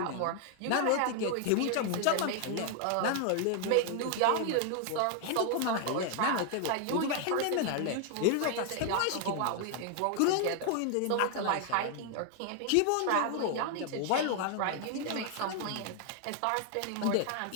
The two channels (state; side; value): different; both; correlation 0.00